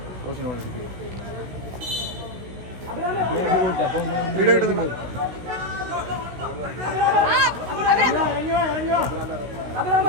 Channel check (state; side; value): late; left; 16 ms